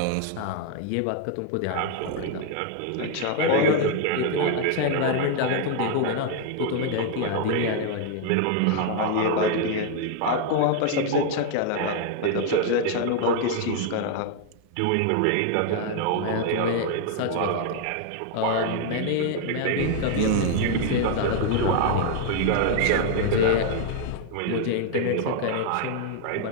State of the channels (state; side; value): different; both; correlation 0.00